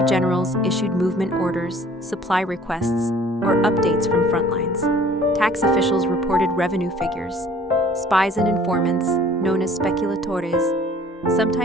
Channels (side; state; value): both; normal; correlation 0.53